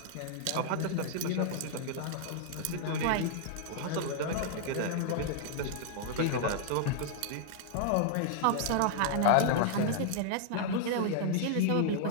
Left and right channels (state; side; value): different; both; correlation -0.01